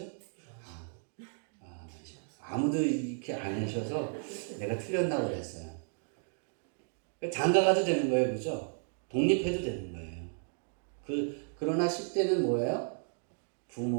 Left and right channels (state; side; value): silent; left; 55 dB below the other